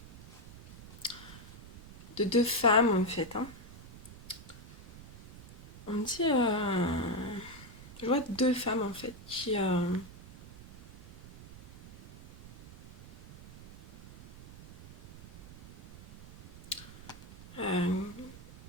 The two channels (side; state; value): right; noise; rumble, 17 dB below the sound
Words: deux femmes, en fait, hein. On me dit... je vois deux femmes, en fait, qui... euh,